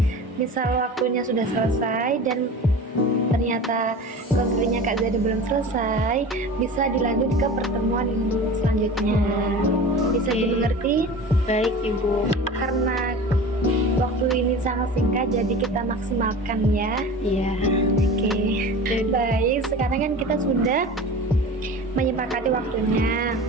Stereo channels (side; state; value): both; normal; correlation 0.35